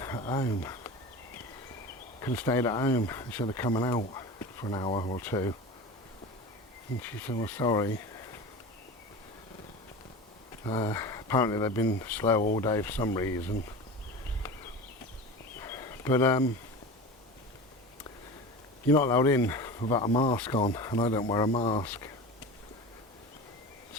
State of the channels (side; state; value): both; normal; correlation 0.32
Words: at home? Could have stayed at home instead of coming out for an hour or two. And she said, well, sorry. Apparently they've been slow all day for some reason. But you're not allowed in without a mask on, and I don't wear a mask.